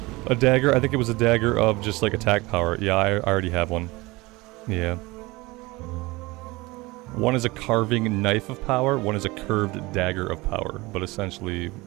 A dagger, I think it was a dagger of just like attack power. Yeah, I already have one. Yeah. One is a carving knife of power, one is a curved dagger of power, but essentially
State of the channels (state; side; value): quieter; left; 22.2 dB